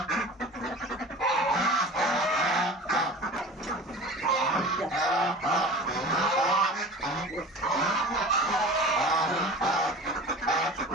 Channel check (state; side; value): normal; both; correlation 0.38